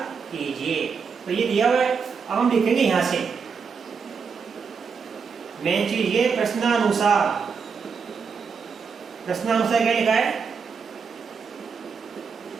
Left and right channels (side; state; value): left; quieter; 5.8 dB